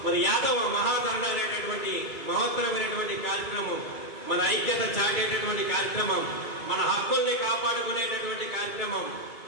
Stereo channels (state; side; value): late; right; 2.2 ms